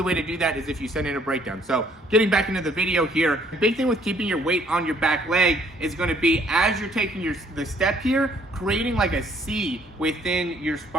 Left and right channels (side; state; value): both; normal; correlation 0.63